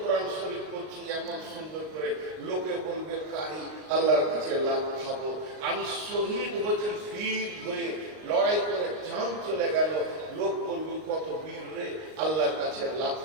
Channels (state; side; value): late; left; 38 ms